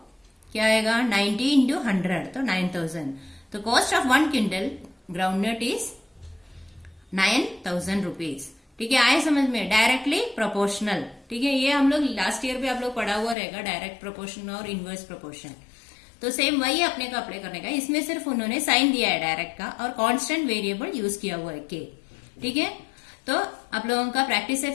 क्या आएगा 90 इंटू 100, तो 9000। तो cost of 1 quintal ground nut is 9000 rupees, ठीक है, आए समझ में, डायरेक्टली प्रोपोर्शनल, ठीक है। ये हम लोग लास्ट ईयर भी आप लोग पढ़ा हुआ रहेगा, डायरेक्ट प्रोपोर्शन और इनवर्स प्रोपोर्शन। तो सेम वही अपने को अप्लाई करने का, इसमें सिर्फ उन्होंने साइन दिया है डायरेक्ट का, और कांस्टेंट वेरिएबल यूज किया हुआ है k, ठीक है। तो आप लोगों का प्रैक्टिस सेट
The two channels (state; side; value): drops out; right; at 13.4 s